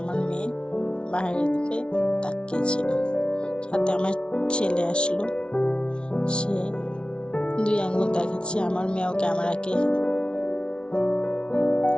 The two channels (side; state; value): right; late; 0.057 ms